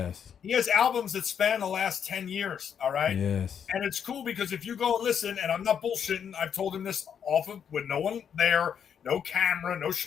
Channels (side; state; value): right; quieter; 8.0 dB